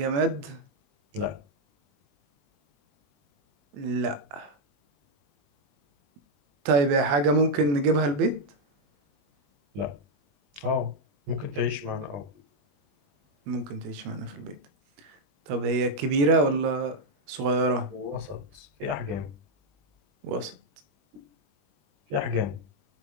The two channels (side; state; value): left; late; 21 ms